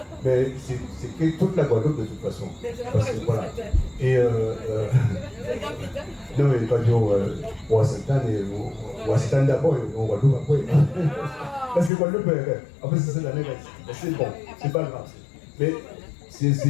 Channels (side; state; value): right; drops out; at 11.9 s